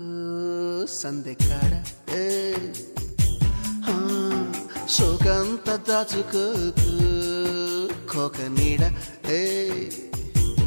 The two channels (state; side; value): inverted; both; correlation -1.00